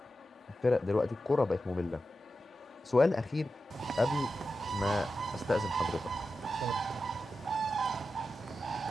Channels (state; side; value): normal; both; correlation 0.91